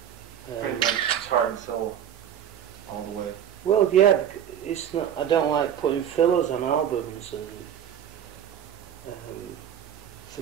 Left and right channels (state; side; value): quieter; left; 9.5 dB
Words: Pretty much it's heart and soul, all the way. Well, yeah, it's not. I don't like putting fillers on albums, and